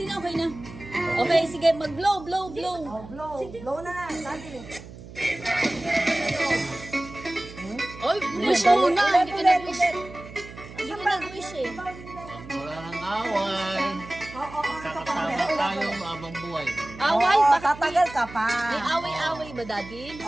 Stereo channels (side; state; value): right; noise; hum, 16 dB below the sound